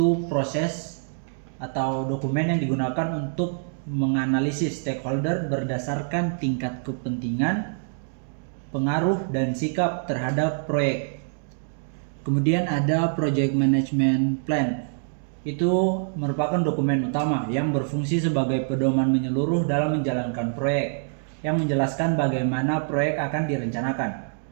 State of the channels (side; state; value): left; silent; digital silence